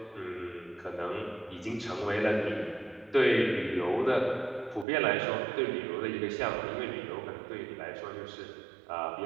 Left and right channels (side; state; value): left; drops out; at 4.9 s